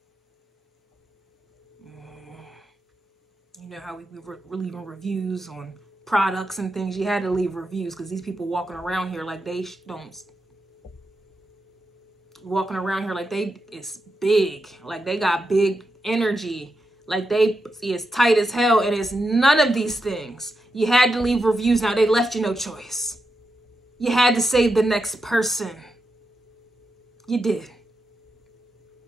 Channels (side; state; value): both; normal; correlation 0.87